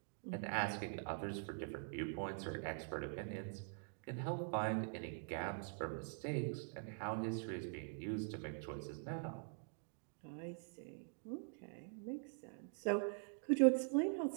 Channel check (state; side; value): silent; left; digital silence